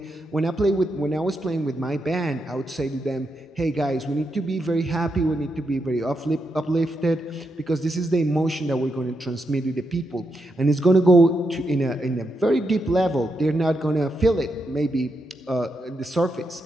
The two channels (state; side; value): normal; both; correlation 0.83